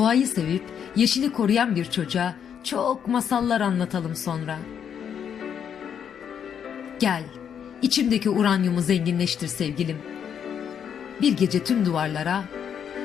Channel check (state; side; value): quieter; right; 8.2 dB